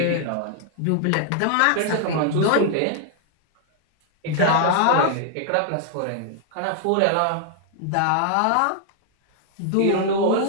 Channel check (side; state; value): both; different; correlation 0.00